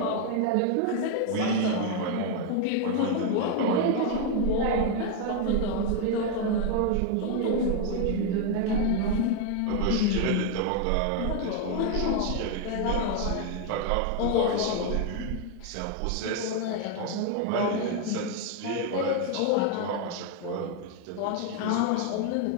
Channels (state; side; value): different; both; correlation 0.01